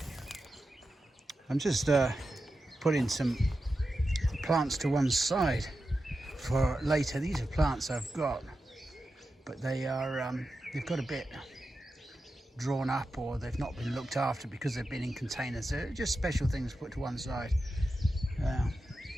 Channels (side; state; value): both; normal; correlation 0.90